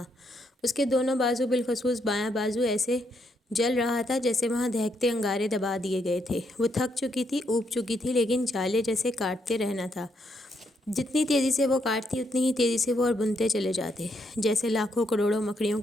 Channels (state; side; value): normal; both; correlation 0.76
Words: اس کے دونوں بازو، بالخصوص بایاں بازو، ایسے جل رہا تھا جیسے وہاں دہکتے انگارے دبا دیے گئے تھے۔ وہ تھک چکی تھی، اوب چکی تھی، لیکن جالے جیسے کاٹتے رہنا تھا۔ جتنی تیزی سے وہ کاٹتی اتنی ہی تیزی سے وہ اور بنتے چلے جاتے، جیسے لاکھوں کروڑوں مکڑیوں